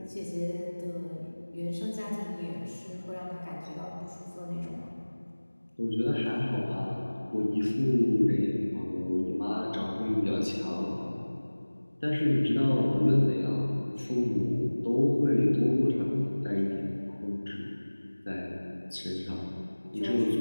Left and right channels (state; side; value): inverted; both; correlation -1.00